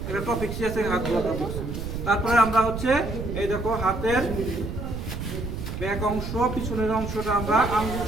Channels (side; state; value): right; noise; rumble, 5 dB below the sound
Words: একটা টপিক শিখেছে হাত ধোয়া টপিক। তারপরে আমরা হচ্ছে এই দেখো হাতের ব্যাক অংশ পিছনের অংশটা আমরা আঙ্গুল